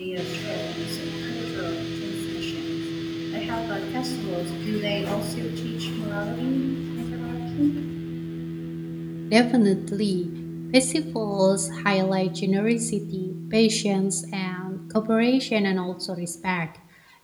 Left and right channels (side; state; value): both; identical; correlation 1.00